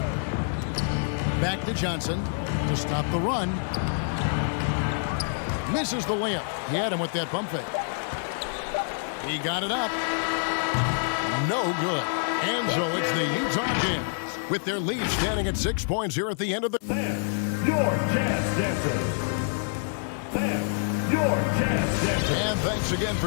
Back to Johnson to stop the run. Misses the layup. He had him with that pump fake. He got it up. No good. And so it's the Utah Jazz with their lead standing at 6 points here at the end of the... Your Jazz Dancer. Your Jazz Dancer. And thanks again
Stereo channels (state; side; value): silent; right; digital silence